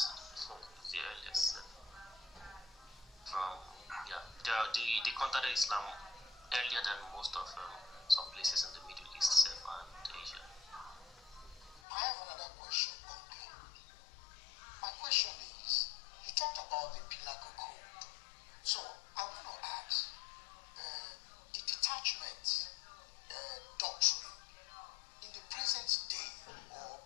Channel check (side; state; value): right; drops out; at 11.8 s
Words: from the earliest. They contacted Islam earlier than most of some places in the Middle East and Asia. I have another question. Okay. My question is, you talked about the Pilaco Code. So I want to ask, the detachment doctrine in the present day, or